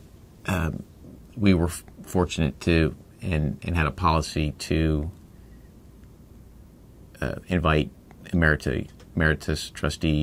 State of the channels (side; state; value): both; identical; correlation 1.00